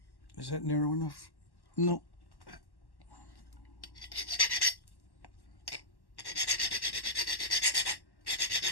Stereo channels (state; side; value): late; right; 1.1 ms